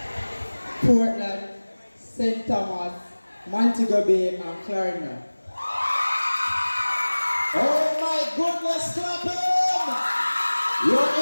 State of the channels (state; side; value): inverted; both; correlation -1.00